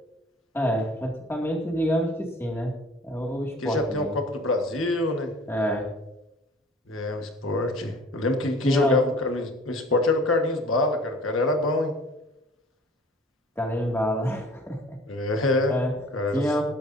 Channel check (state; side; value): normal; both; correlation 0.48